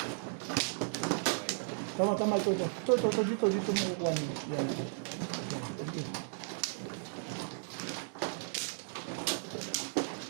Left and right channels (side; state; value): left; silent; digital silence